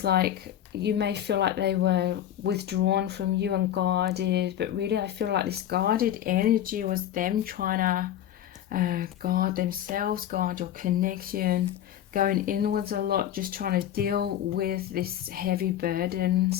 like you may feel like they were withdrawn from you and guarded, but really I feel like this guarded energy was them trying to guard themselves, guard your connection, going inwards a lot, just trying to deal with this heavy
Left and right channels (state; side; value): quieter; right; 11.2 dB